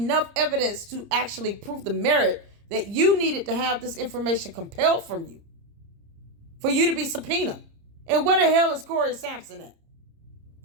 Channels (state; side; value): late; left; 30 ms